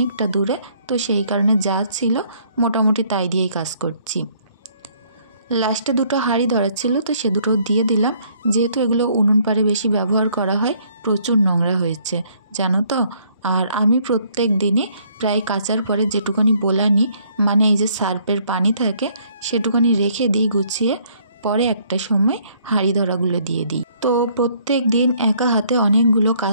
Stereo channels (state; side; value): inverted; both; correlation -0.64